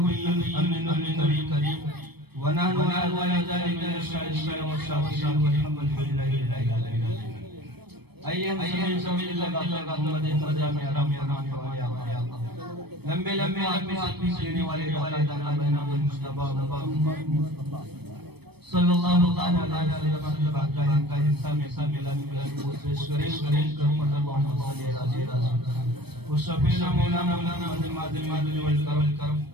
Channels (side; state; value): left; late; 0.97 ms